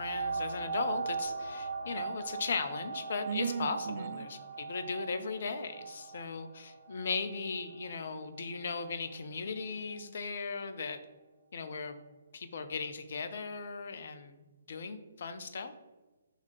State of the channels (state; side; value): inverted; both; correlation -0.74